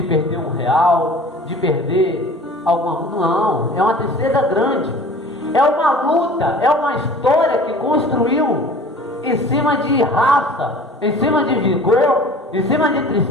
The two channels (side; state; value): both; normal; correlation 0.44